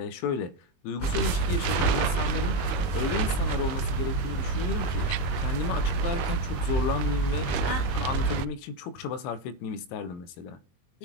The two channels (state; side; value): late; right; 22 ms